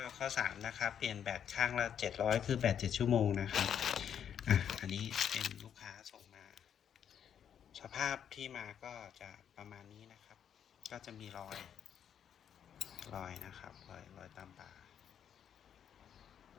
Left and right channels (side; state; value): right; quieter; 8.8 dB